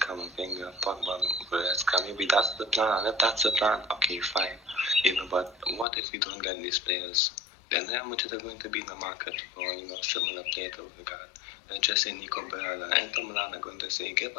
Pogba, Goretzka. Maybe that's the plan. And if that's the plan, okay, fine. You know, but what if we don't get these players? Then how much are going to be in the market for, similar player to Ødegaard? They're just say Nico Barella. Inter Milan are going to say, give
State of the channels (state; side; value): drops out; right; at 5.9 s